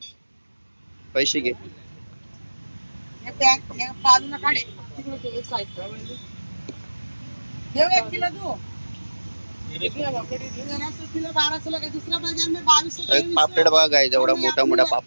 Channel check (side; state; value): both; inverted; correlation -1.00